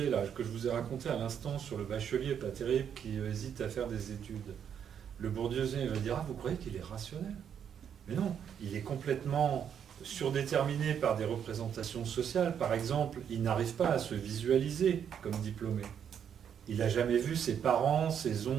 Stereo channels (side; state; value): left; quieter; 8.3 dB